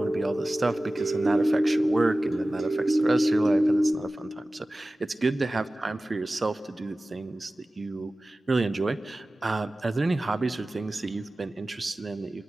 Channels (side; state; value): both; normal; correlation 0.97